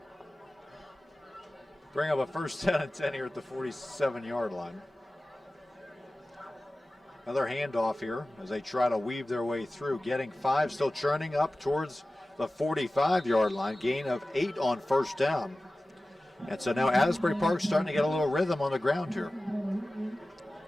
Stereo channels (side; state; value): both; normal; correlation 0.96